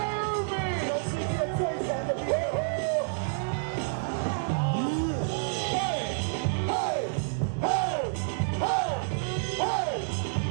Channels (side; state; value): left; silent; digital silence